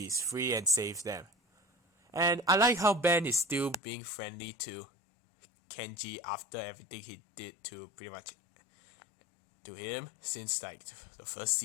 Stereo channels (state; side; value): drops out; right; at 3.8 s